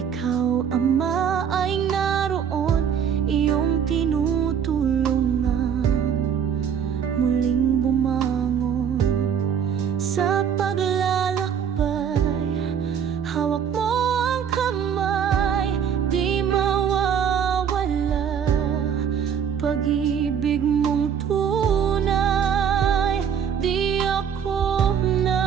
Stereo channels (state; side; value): quieter; left; 7.9 dB